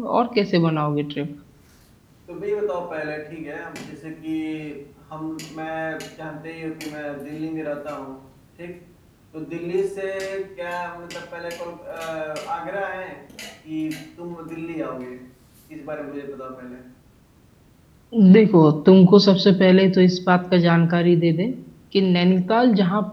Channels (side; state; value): both; identical; correlation 1.00